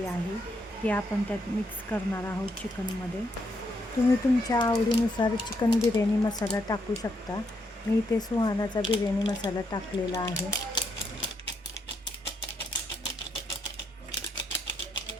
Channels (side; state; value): both; normal; correlation 0.77